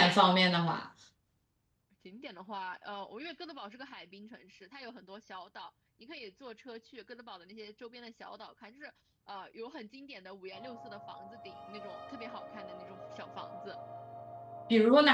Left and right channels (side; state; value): both; identical; correlation 1.00